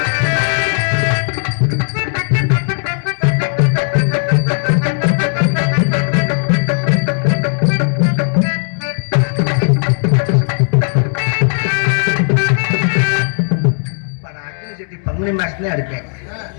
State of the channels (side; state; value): right; silent; digital silence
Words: பங்குனி மாசத்துல அடிப்பேன்.